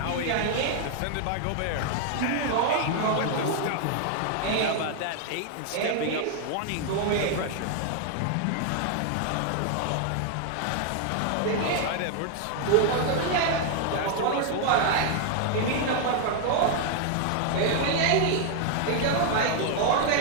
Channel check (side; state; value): both; different; correlation 0.00